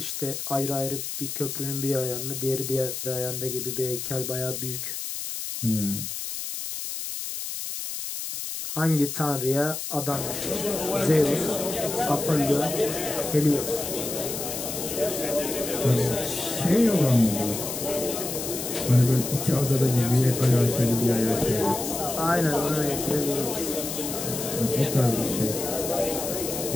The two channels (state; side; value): noise; left; hiss, 5 dB below the sound